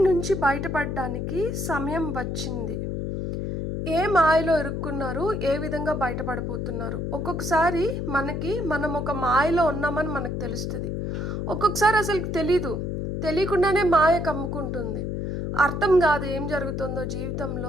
నుంచి బయటపడడానికి సమయం వచ్చింది. ఏ మాయలో ఇరుక్కున్నారు, ఏ విధంగా బయటపడబోతున్నారు. ఒక్కొక్కసారి మనం ఒక మాయలో ఉన్నామని మనకు తెలుస్తుంది. ఒక్కొక్కసారి అసలు తెలియకుండానే మాయ కమ్ముకుంటుంది. అర్థం కాదు ఏం జరుగుతుందో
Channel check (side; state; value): left; noise; hum, 3 dB below the sound